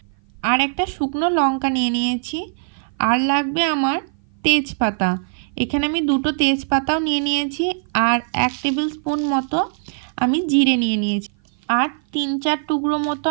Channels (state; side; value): silent; left; 56 dB below the other